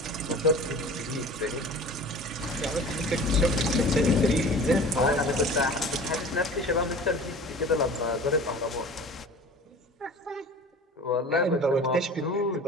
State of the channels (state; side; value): normal; both; correlation 0.40